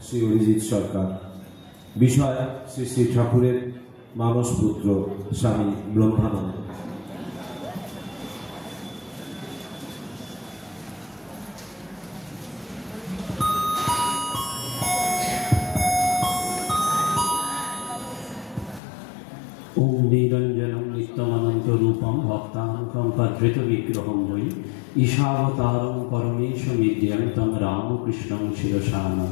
শ্রী অরিজিৎ সরকার। বিষয় শ্রী শ্রী ঠাকুরের মানসপুত্র স্বামী ব্রহ্মানন্দ। ओम निरंजनम नित्यमनंत रूपम भक्तानां पद्रित विग्रहं वै ईशावतारं परमेशमिद्यं तं रामकृष्णं शिरसा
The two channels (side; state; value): right; drops out; at 18.8 s